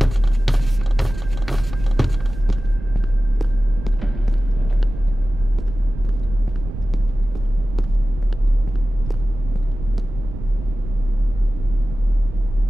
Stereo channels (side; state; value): right; noise; rumble, 10 dB below the sound